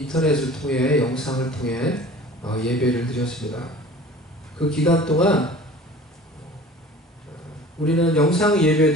통해 영상을 통해 예배를 드렸습니다. 그 기간 동안 우리는 영상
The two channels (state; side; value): normal; both; correlation 0.43